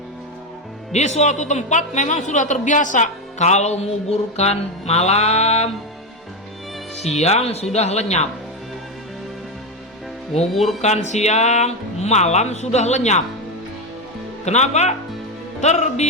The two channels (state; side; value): normal; both; correlation 0.11